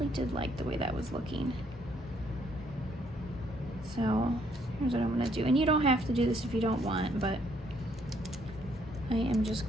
did like the way that was looking. So here's what I'm going to do. And you don't have to do this if you don't want, but I am just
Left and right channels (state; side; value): normal; both; correlation 0.68